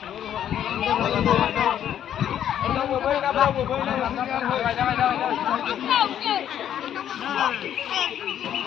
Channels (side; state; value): right; quieter; 10.2 dB